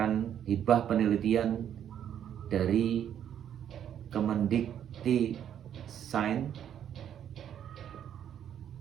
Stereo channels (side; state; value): left; quieter; 9.7 dB